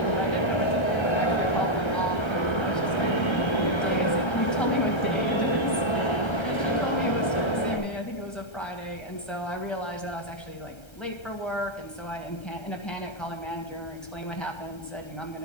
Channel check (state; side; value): late; right; 1.3 ms